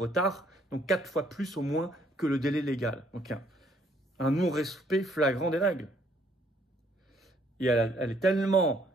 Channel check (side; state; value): both; normal; correlation 0.66